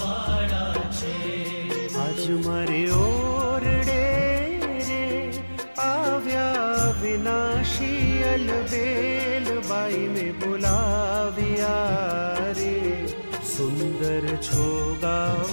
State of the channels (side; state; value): both; inverted; correlation -1.00